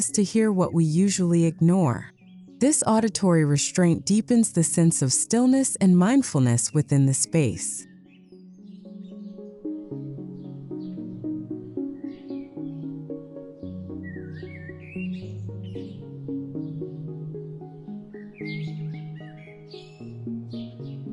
to hear what we usually ignore. This auditory restraint deepens the sense of stillness and mindfulness within the space.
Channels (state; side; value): identical; both; correlation 1.00